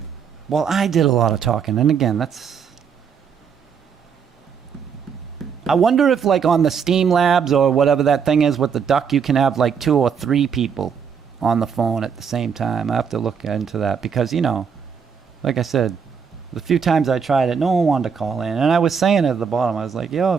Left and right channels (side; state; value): left; quieter; 6.8 dB